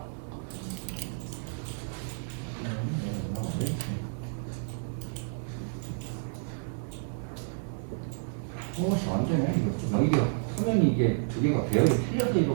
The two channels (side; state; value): left; silent; 57 dB below the other